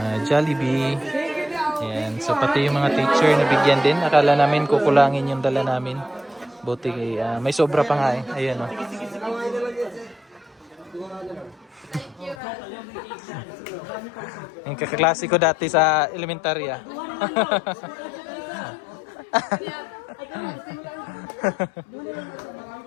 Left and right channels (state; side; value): drops out; right; at 12.4 s